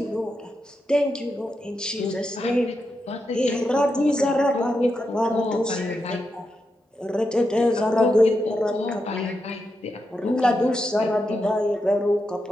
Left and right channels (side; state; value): both; normal; correlation 0.86